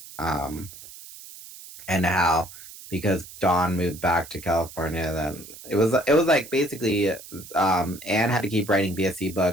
And how because Dawn moved back to California, then it was like basically Anne had to keep writing BSC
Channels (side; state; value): right; noise; hiss, 16 dB below the sound